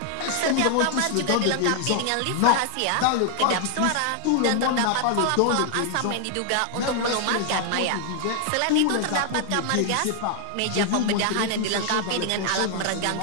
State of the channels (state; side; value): different; both; correlation 0.00